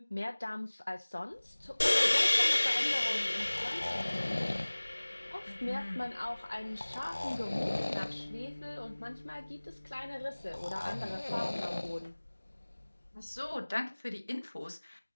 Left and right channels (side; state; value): both; inverted; correlation -1.00